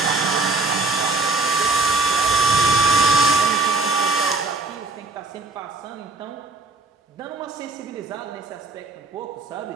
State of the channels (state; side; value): quieter; left; 3.4 dB